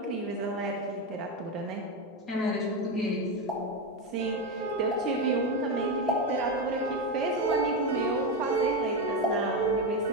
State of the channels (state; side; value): normal; both; correlation 0.11